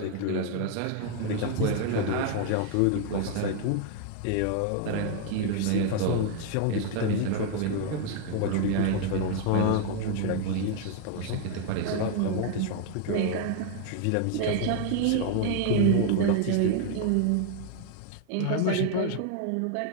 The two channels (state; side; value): different; both; correlation 0.00